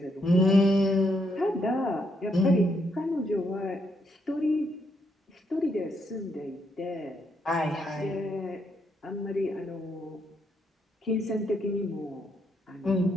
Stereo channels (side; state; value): both; normal; correlation 0.76